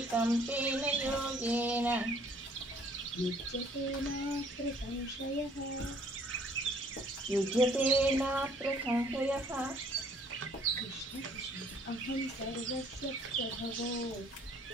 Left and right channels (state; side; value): normal; both; correlation 0.59